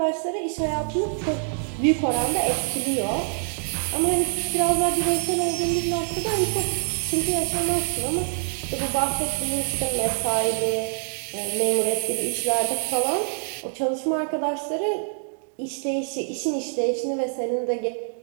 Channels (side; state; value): left; silent; digital silence